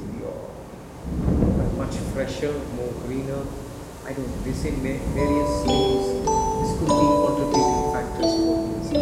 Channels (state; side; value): identical; both; correlation 1.00